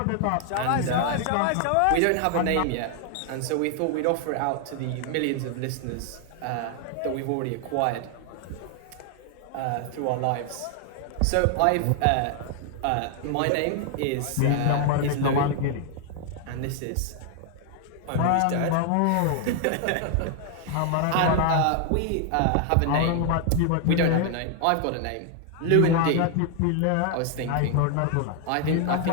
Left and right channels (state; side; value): different; both; correlation 0.00